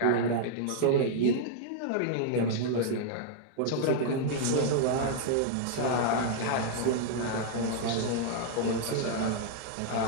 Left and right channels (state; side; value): different; both; correlation -0.01